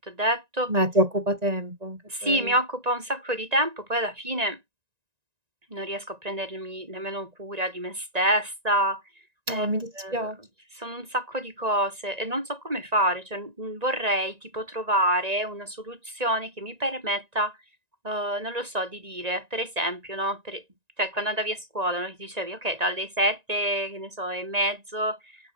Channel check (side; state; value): left; late; 1.9 ms